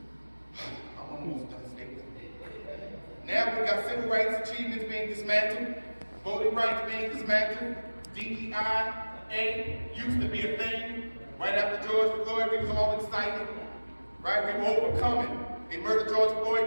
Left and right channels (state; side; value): inverted; both; correlation -1.00